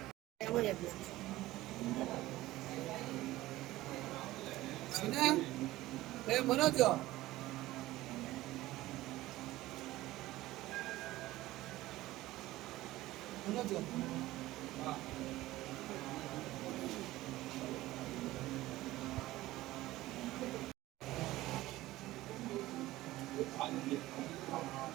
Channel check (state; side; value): quieter; left; 17.0 dB